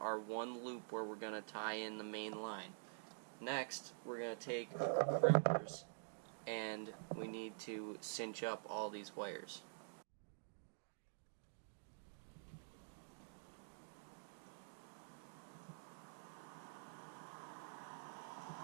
one loop where we're going to tie in the main line. Next, we're going to take our crimpers, and we need to cinch up all these wires.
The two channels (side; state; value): left; silent; digital silence